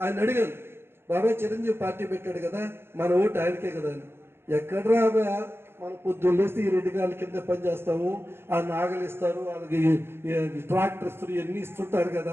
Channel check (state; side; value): late; left; 0.11 ms